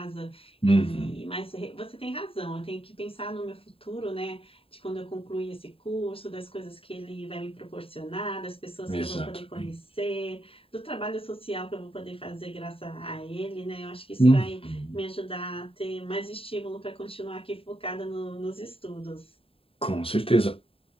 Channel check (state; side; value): late; right; 0.27 ms